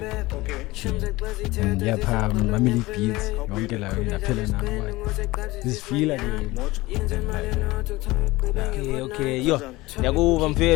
and yeah, family beats. Don't get like I feel now like this feel like okay yo yakuva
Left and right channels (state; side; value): quieter; right; 20.1 dB